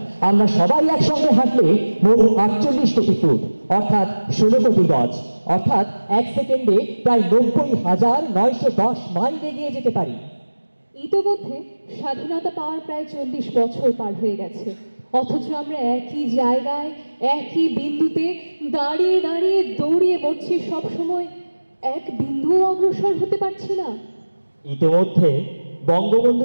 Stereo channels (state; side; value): inverted; both; correlation -1.00